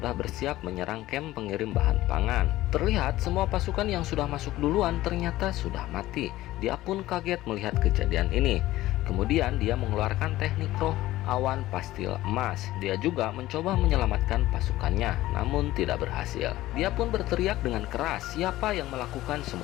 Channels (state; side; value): quieter; right; 16.1 dB